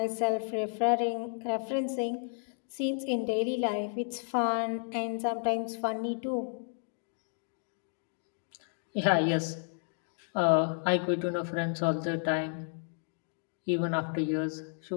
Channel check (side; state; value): right; silent; 56 dB below the other